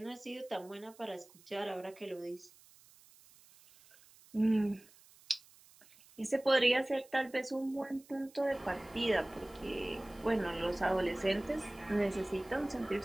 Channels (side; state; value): right; noise; hiss, 25 dB below the sound